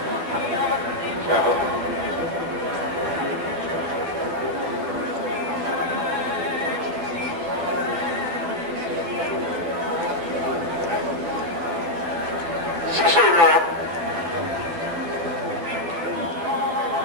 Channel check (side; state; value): left; late; 12 ms